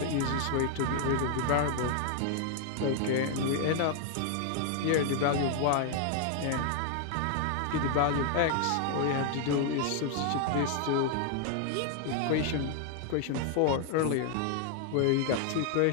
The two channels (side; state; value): both; different; correlation 0.00